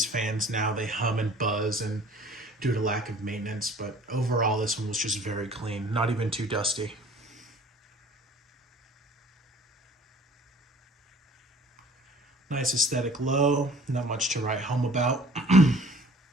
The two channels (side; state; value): both; normal; correlation 0.51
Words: fans now, they hum and buzz and due to lack of maintenance, but overall this one was just very clean, not even too dusty. Nice aesthetic low, not much to write home about.